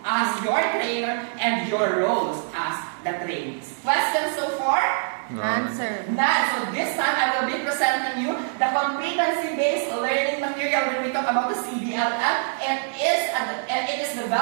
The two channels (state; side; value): silent; left; digital silence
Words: as your trainer and your roles as the trainees. Questions so far? None, sir. None. So this time I will be presenting you the competency-based learning material when we talk about the CDLM. It is